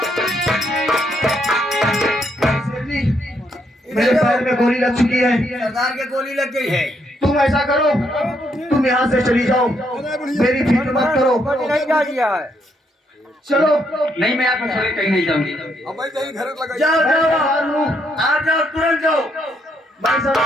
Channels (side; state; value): both; normal; correlation 0.75